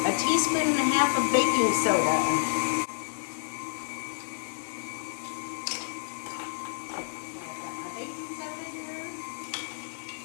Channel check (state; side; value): silent; right; digital silence